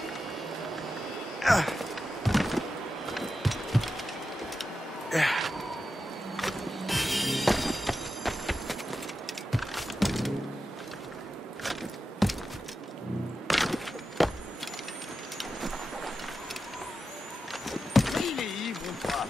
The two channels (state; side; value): normal; both; correlation 0.90